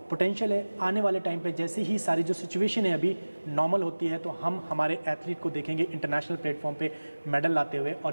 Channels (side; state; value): both; inverted; correlation -1.00